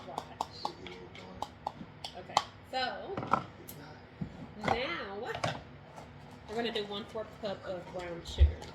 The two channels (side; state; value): both; identical; correlation 1.00